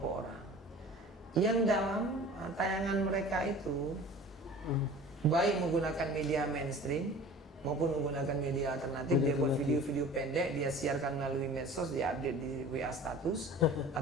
orang yang dalam tayangan mereka itu baik menggunakan media mainstream maupun menggunakan media alternatif. Dia buat video-video pendek, dia siarkan melalui medsos, dia update di WA status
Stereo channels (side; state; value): both; normal; correlation 0.43